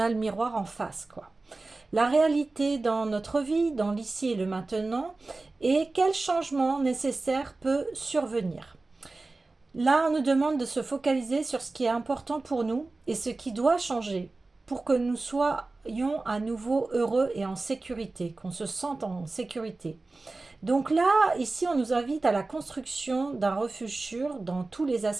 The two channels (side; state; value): left; quieter; 3.4 dB